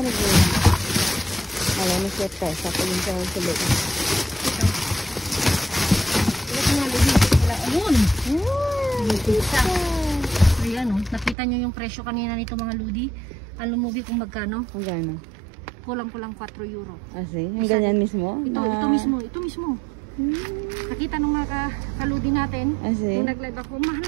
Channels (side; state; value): left; drops out; at 11.4 s